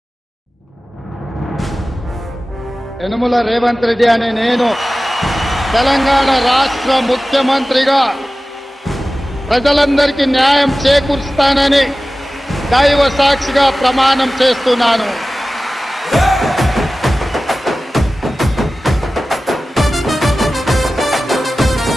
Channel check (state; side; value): normal; both; correlation 0.96